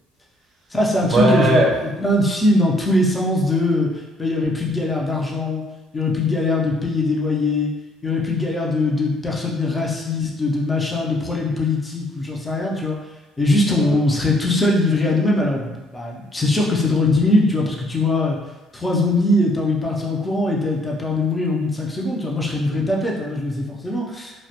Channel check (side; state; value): both; normal; correlation 0.65